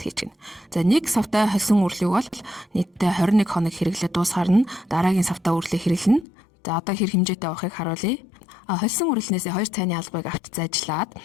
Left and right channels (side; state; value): right; drops out; at 6.2 s